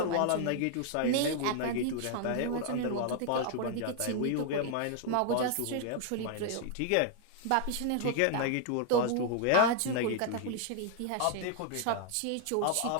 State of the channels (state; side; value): different; both; correlation 0.00